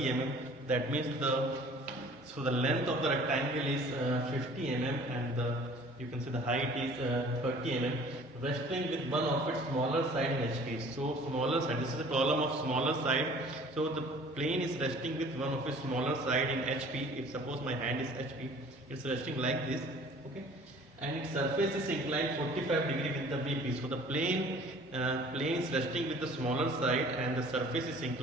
that means the length of the rectangle is 50 mm, and you can say the height is 30 mm, resting with one of its smaller side in HP. So smaller side, this is the problem of smaller side. So the plane is resting with one of its smaller side in HP. If suppose my hand is HP, it's resting like this, okay, and its surface is inclined 45 degree with the VP. So the plane is resting with the smaller side and the surface is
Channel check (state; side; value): normal; both; correlation 0.50